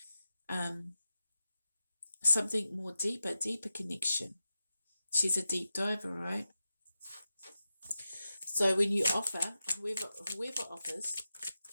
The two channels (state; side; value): inverted; both; correlation -0.91